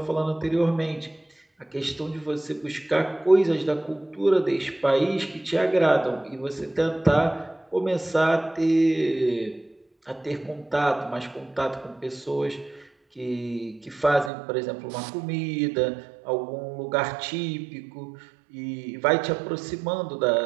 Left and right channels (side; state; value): left; drops out; at 14.3 s